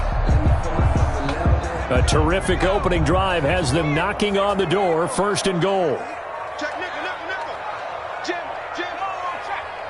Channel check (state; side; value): identical; both; correlation 1.00